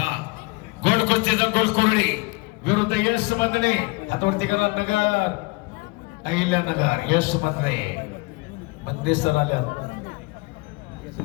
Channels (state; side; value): quieter; right; 25.8 dB